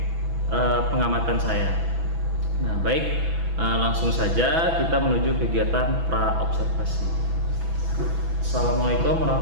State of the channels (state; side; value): late; left; 6.0 ms